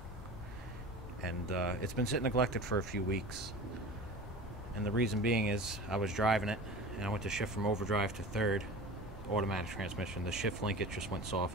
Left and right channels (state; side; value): normal; both; correlation 0.36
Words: And it's been sitting neglected for a few weeks. And the reason being is I was driving it and I went to shift from overdrive to third automatic transmission. The shift linkage just went